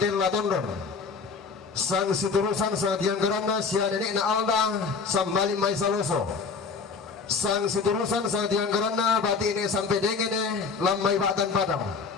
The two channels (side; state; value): right; quieter; 5.0 dB